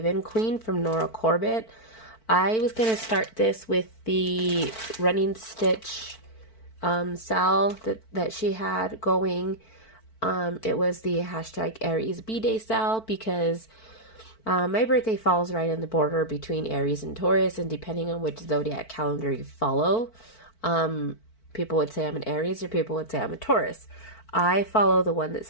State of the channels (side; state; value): right; late; 4.5 ms